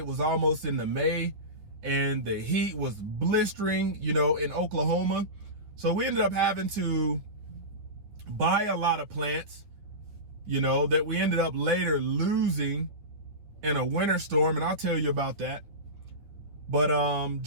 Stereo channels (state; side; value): late; left; 9.5 ms